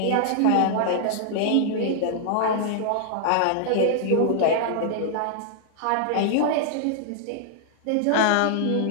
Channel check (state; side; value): different; both; correlation -0.01